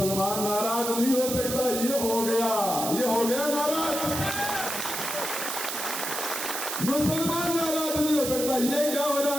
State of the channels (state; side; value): noise; right; hiss, 4 dB below the sound